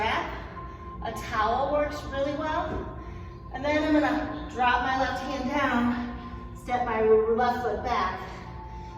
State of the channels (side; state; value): both; identical; correlation 1.00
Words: a towel works really well. And then I'm gonna drop my left hand down, step my left foot back,